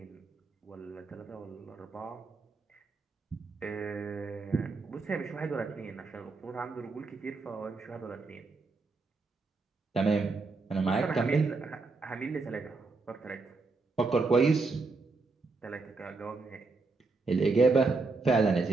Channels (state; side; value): quieter; left; 3.9 dB